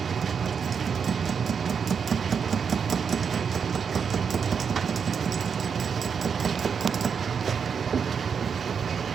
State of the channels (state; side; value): quieter; left; 6.6 dB